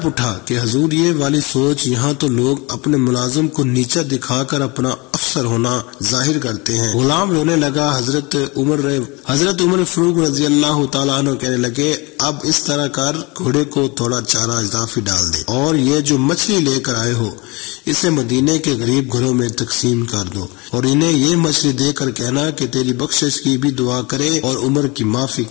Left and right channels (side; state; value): right; quieter; 26.4 dB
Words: اٹھا کہ حضور یہ والی سوچ، یہاں تو لوگ اپنے ملازم کو نیچا دکھا کر اپنا افسر ہونا ظاہر کرتے ہیں۔ غلام رونے لگا۔ حضرت عمر فاروق رضی اللہ تعالیٰ عنہ کہنے لگے، اب اس طرح کر، گھوڑے کو تھوڑا چارہ اضافی ڈال دے اور یہ جو مچھلی لے کر آئے ہو اسے مدینے کے غریب گھروں میں تقسیم کر دو، اور انہیں یہ مچھلی دے کر کہنا کہ تیری بخشش کی بھی دعا کرے اور عمر کی معافی